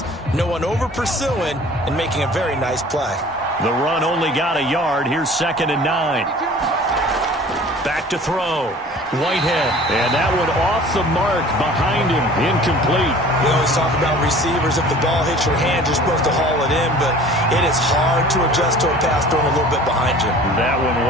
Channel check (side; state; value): both; normal; correlation 0.46